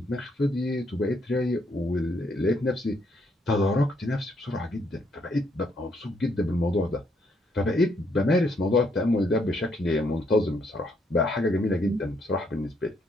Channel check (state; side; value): normal; both; correlation 0.73